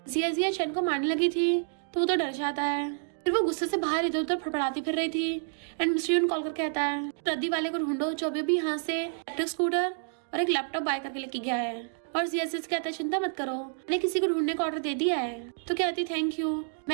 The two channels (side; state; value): left; silent; digital silence